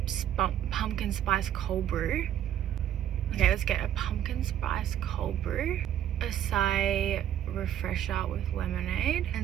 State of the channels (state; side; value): quieter; left; 10.8 dB